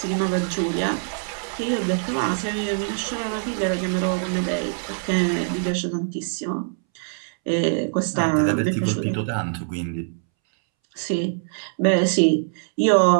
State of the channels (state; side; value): silent; left; 63 dB below the other